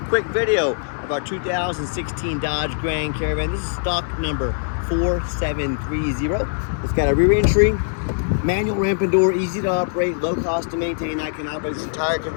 quick video of our 2016 Dodge Grand Caravan. This is stock number 4730. It's got a rear entry, manual ramp and door, easy to operate, low cost to maintain. I can operate this entire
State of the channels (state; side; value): silent; right; digital silence